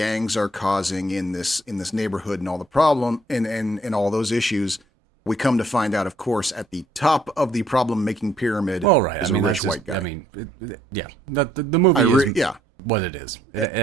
are causing in this neighborhood and all the problem and all those issues, we come to find out, of course, at the top of the problem-making pyramid is a rich white guy. I mean, the movie is what it is.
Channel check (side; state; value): both; normal; correlation 0.67